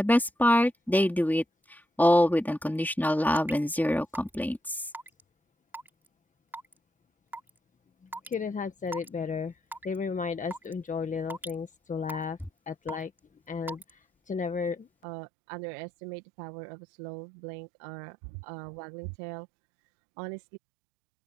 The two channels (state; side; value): drops out; left; at 14.9 s